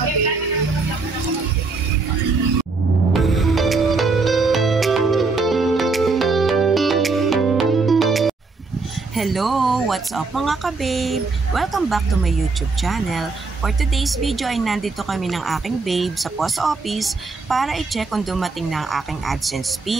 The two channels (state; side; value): quieter; left; 4.0 dB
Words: Hello! What's up mga ka-babe? Welcome back to my YouTube channel. For today's video ay nandito kami ng aking babe sa post office para i-check kung dumating na ang aking AdSense